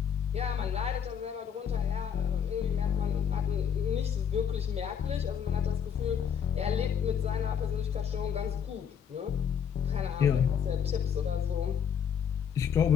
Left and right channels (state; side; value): quieter; right; 7.9 dB